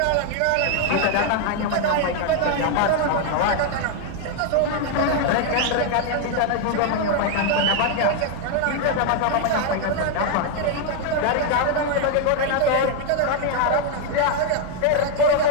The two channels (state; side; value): different; both; correlation 0.00